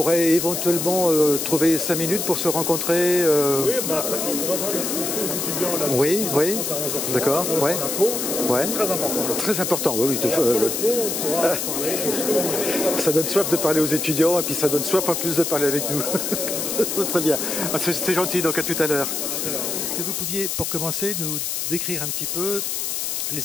éventuellement trouver 5 minutes pour se rencontrer. Oui, bah, on va voir les étudiants là. Oui, oui, d'accord, ouais. Ouais. Très important. Très important, oui. On pourra parler de ce que l'on veut. Ça donne soif de parler aux étudiants et puis ça donne soif en plus de parler avec nous. Très bien. C'est gentil, donc à tout à l'heure. Est-ce que vous pouviez, pour commencer, nous décrire un petit peu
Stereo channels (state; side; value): noise; left; hiss, 2 dB below the sound